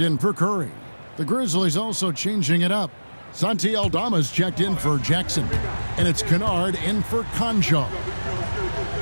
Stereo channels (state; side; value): inverted; both; correlation -1.00